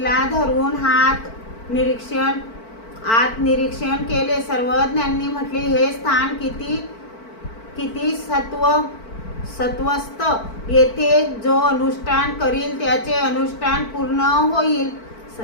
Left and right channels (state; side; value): late; right; 4.5 ms